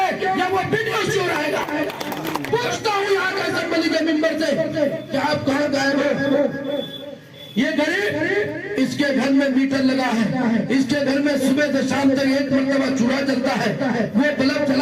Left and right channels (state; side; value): identical; both; correlation 1.00